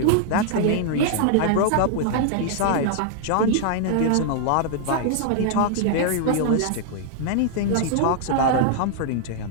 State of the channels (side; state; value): both; different; correlation -0.01